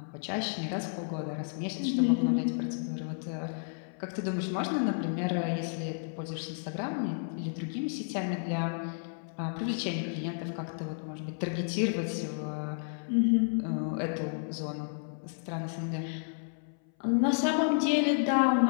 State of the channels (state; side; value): silent; right; 57 dB below the other